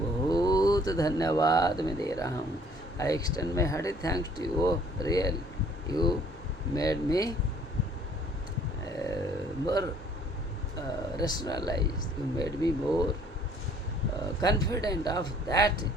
धन्यवाद मैं दे रहा हूँ। I extend my hearty thanks to you, real you made me more rationalized, you made me more confident of that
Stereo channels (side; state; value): both; normal; correlation 0.58